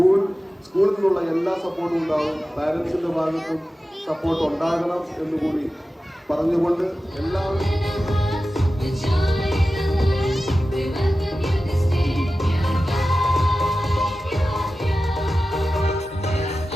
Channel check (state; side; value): normal; both; correlation 0.94